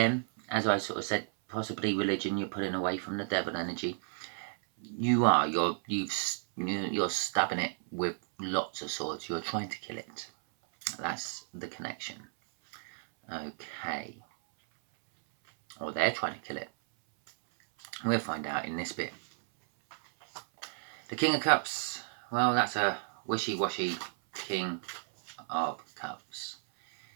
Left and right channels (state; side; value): silent; left; 56 dB below the other